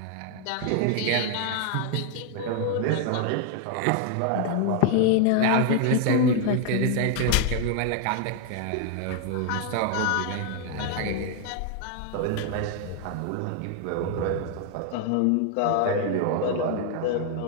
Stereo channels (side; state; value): both; different; correlation 0.00